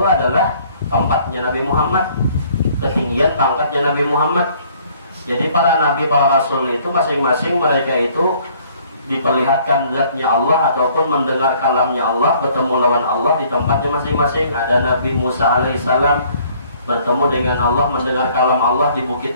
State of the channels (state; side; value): inverted; both; correlation -0.59